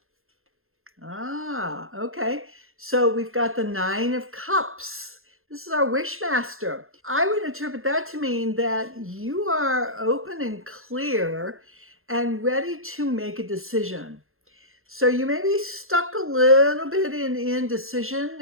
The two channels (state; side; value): late; left; 0.61 ms